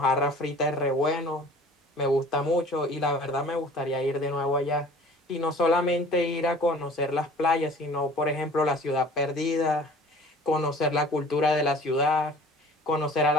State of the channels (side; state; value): both; normal; correlation 0.47